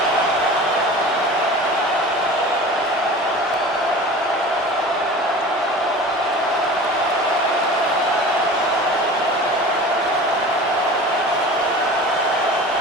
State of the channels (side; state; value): both; normal; correlation 0.38